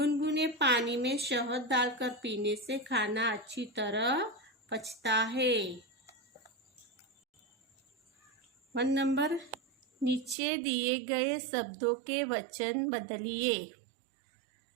पानी में शहद डालकर पीने से खाना अच्छी तरह पचता है। 1 नंबर, नीचे दिए गए शब्दों के वचन बदलिए।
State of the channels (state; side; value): drops out; left; at 10.4 s